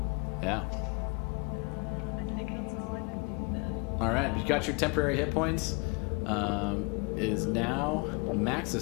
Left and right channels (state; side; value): quieter; right; 30.1 dB